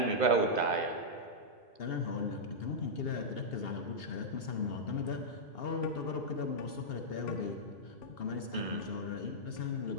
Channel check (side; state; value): right; late; 2.8 ms